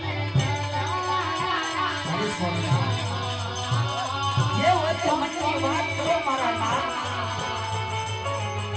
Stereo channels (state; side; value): identical; both; correlation 1.00